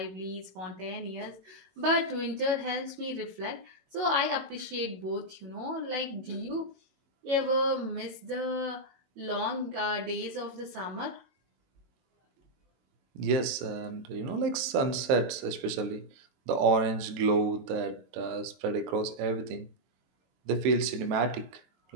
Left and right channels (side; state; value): left; late; 23 ms